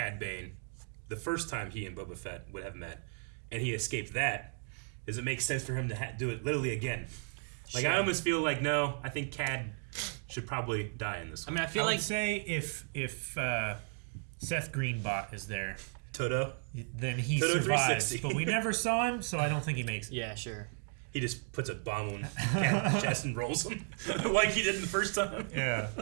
Bane, the first time he and Boba Fett would have met, and he escaped that, does it make sense for him to do it literally again? Like Sure. I almost feel like no. I think Cad should probably die in this one. I mean, I feel like would say if Seth Greenbot is there, Toto, then he Toto survives. 360. But we never saw him, so I don't think he makes it. Yeah, sure. He just puts a bomb on Cad's chest and rolls him like he did in the first time. Yeah.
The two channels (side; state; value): left; silent; 55 dB below the other